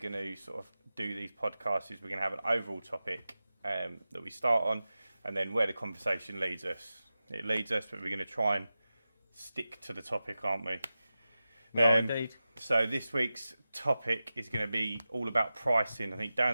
to sort of do these podcasts is we're going to have an overall topic that we start on, and then where the conversation leads us. It leads us, but we're going to try and stick to the topic, aren't we? Indeed. So this week's topic is going to be all about pricing. I think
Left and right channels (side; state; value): both; inverted; correlation -0.94